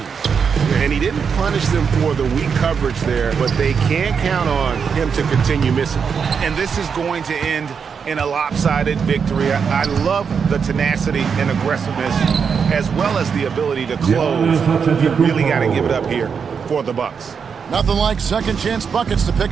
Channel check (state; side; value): quieter; left; 6.4 dB